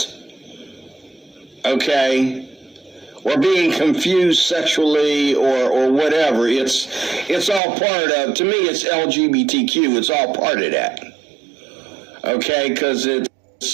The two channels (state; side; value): drops out; left; at 7.6 s